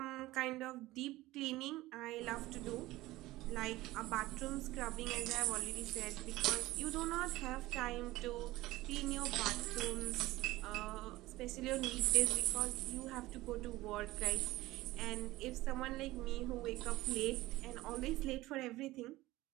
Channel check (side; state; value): left; quieter; 18.1 dB